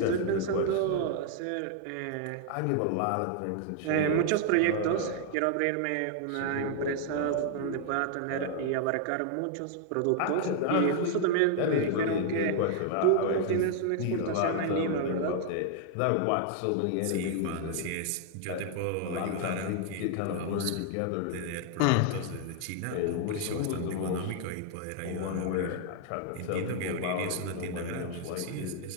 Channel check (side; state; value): both; different; correlation 0.00